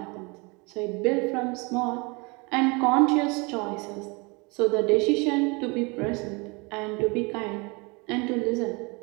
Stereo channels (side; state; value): left; quieter; 28.4 dB